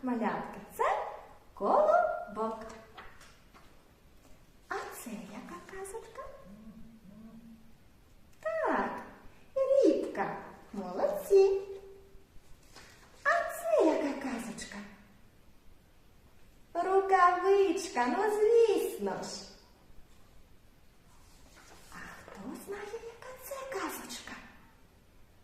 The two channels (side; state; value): both; identical; correlation 1.00